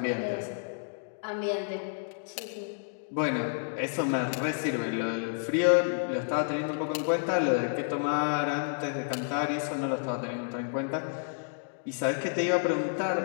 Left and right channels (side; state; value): right; silent; digital silence